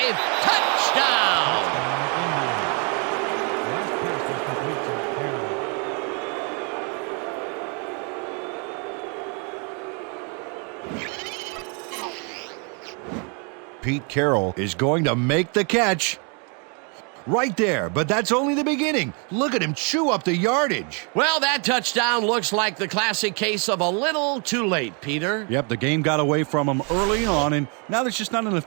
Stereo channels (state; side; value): quieter; left; 36.0 dB